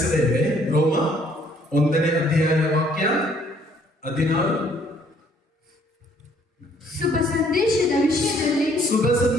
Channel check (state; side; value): normal; both; correlation 0.63